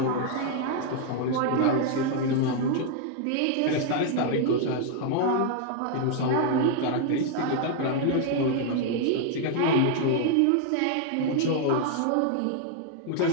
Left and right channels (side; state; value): both; different; correlation 0.00